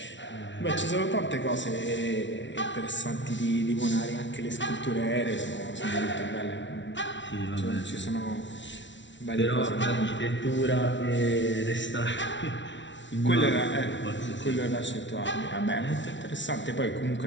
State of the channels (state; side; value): late; right; 0.54 ms